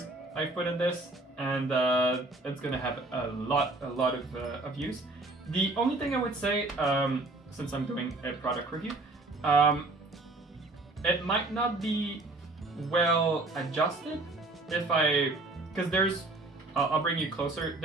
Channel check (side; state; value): left; quieter; 3.1 dB